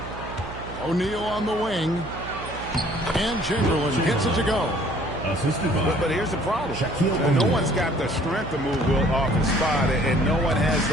O'Neal on the wing. And Chamberlain gets it to go. But here's the problem. No one's got the strength to move Wilt off his spot, and no one has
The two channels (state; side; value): noise; right; hum, 12 dB below the sound